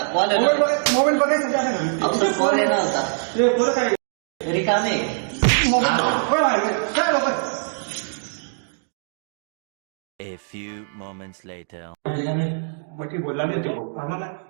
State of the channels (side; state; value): left; silent; digital silence